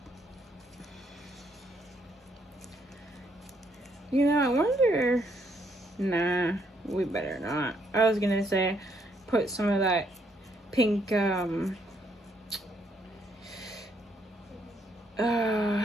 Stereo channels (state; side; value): normal; both; correlation 0.72